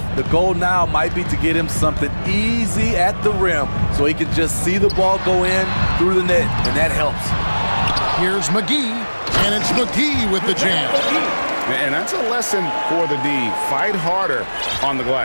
The goal now might be to get him something easy at the rim so he can just see the ball go in through the net, and that helps. Here's McGee, and it's McGee with the jam. And that's a lesson for the D. Fight harder on the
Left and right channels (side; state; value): both; inverted; correlation -1.00